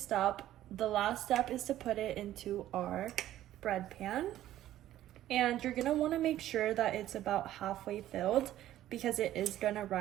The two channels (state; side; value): quieter; left; 13.3 dB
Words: up, the last step is to put it into our bread pan. And you're gonna wanna make sure that it's about halfway filled because it is gonna